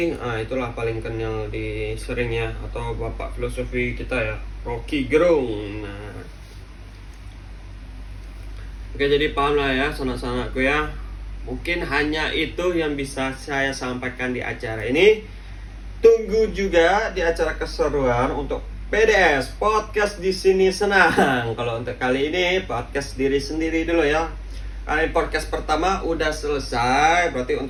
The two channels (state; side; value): identical; both; correlation 1.00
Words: itulah paling kenal di seringnya, atau bapak filosofi kita ya, Rocky Gerung. Nah, oke, jadi paham lah ya sanak-sanakku ya. Mungkin hanya itu yang bisa saya sampaikan di acara ini. Tunggu juga di acara keseruan untuk PDS Podcast di sini senang. Kalau untuk kali ini podcast diri sendiri dulu ya. Kali podcast pertama udah selesai, berarti